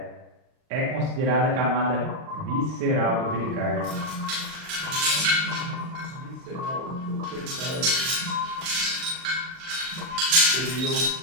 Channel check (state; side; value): late; left; 38 ms